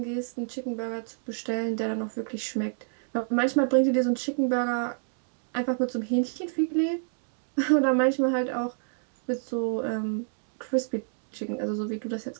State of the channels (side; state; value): left; silent; digital silence